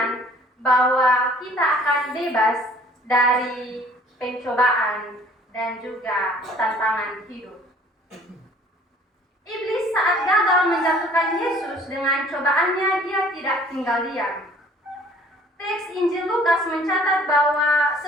bahwa kita akan bebas dari pencobaan dan juga tantangan hidup. Iblis saat gagal menjatuhkan Yesus dengan cobaannya, dia tidak tinggal diam. Teks Injil Lukas mencatat bahwa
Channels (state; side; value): normal; both; correlation 0.54